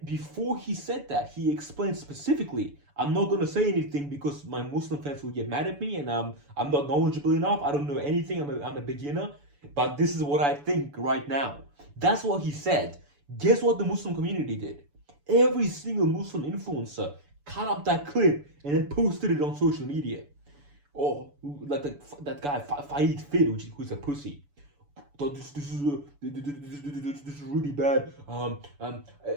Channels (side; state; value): left; late; 6.9 ms